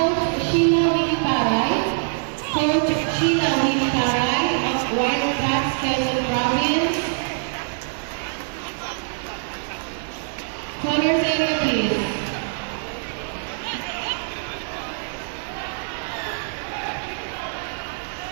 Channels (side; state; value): left; silent; digital silence